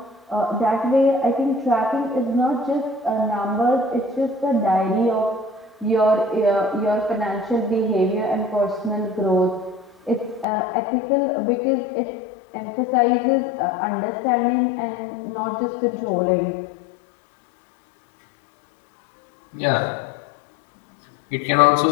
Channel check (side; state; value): right; drops out; at 10.5 s